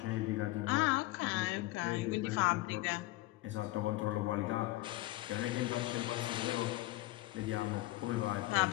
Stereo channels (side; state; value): right; quieter; 18.6 dB